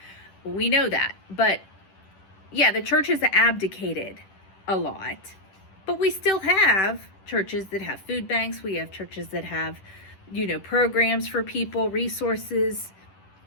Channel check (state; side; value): late; right; 10 ms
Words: We know that. But yeah, the church has abdicated a lot. But we still have churches that have food banks. We have churches that have, programs for people, resources.